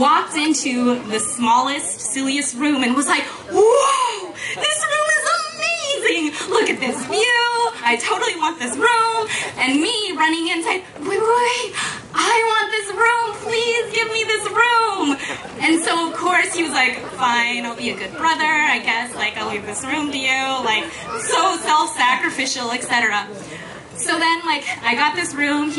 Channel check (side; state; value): both; identical; correlation 1.00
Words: into the smallest, silliest room and was like, "Whoa, this room is amazing! Look at this view! I totally want this room!" And me running in saying, wait, I want this room! Please give me this room! And so, of course, he was like, "Fine, I'll be a good brother, I guess. Like, I'll leave this room to you." Like, so self-sacrificial, etc. So then, like, I got this room,